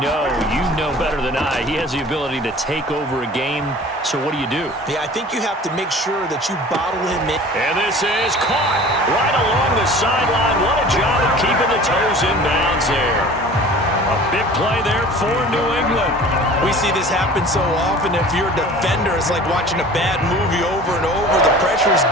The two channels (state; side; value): normal; both; correlation 0.43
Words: know. You know better than I. He has the ability to take over a game. So what do you do? Yeah, I think you have to make sure that you bottle him in. And this is caught right along the sideline. What a job of keeping the toes in bounds there. A big play there for New England. We see this happen so often. If you're a defender, it's like watching a bad movie over and over. The pressure is